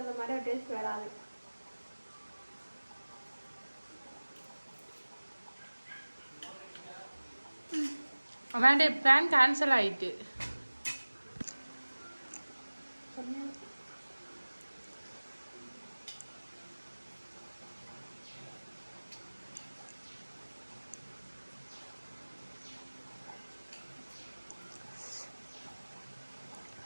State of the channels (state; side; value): inverted; both; correlation -1.00